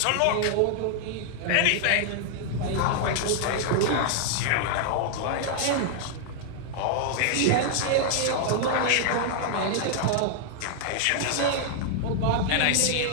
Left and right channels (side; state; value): both; different; correlation -0.01